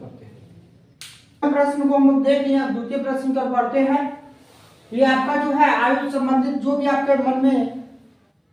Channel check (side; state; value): both; identical; correlation 1.00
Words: हैं। प्रश्न को हम लोग देख लिया, द्वितीय प्रश्न की ओर बढ़ते हैं। ये आपका जो है आयु संबंधित जो भी आपके मन में